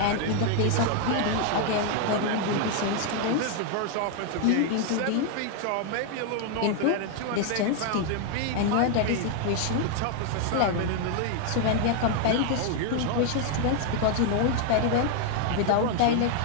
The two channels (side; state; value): both; different; correlation 0.00